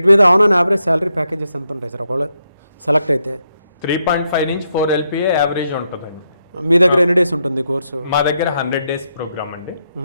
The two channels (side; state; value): both; inverted; correlation -0.81